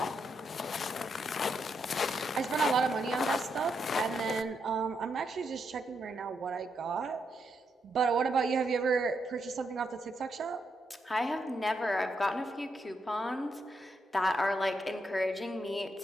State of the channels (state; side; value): normal; both; correlation 0.80